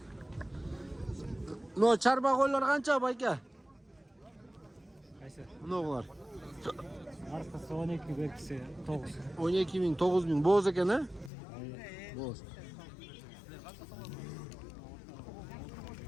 Но чарба қойлар қанша байке? Мұнағылар? Марқасы 12 беркісі 9. 12 мың, 9 мың. Боз екен, ә? Боз.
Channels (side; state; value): right; drops out; at 11.3 s